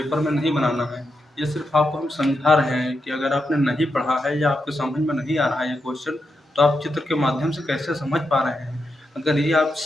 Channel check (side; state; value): both; normal; correlation 0.85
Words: में नहीं बनाना है। ये सिर्फ आपको हम समझा रहे हैं कि अगर आपने नहीं पढ़ा है या आपके समझ में नहीं आ रहा है ये क्वेश्चन, तो आप चित्र के माध्यम से कैसे समझ पा रहे हैं। अगर ये आप